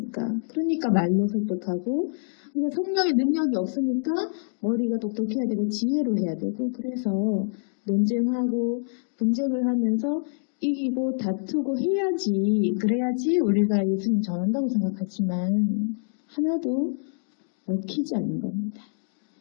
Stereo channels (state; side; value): silent; right; 61 dB below the other